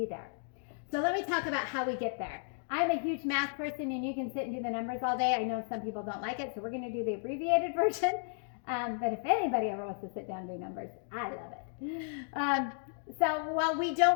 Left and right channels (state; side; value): silent; right; digital silence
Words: there. So let me talk about how we get there. I'm a huge math person and you can sit and do the numbers all day. I know some people don't like it, so we're going to do the abbreviated version. But if anybody ever wants to sit down and do numbers, I love it. So while we